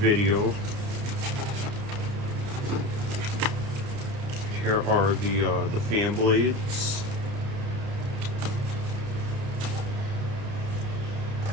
Here are the fan blades.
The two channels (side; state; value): left; late; 30 ms